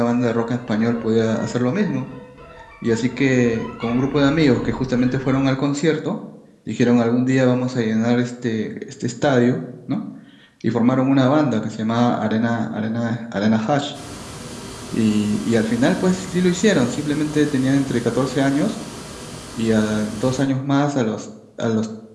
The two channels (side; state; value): both; identical; correlation 1.00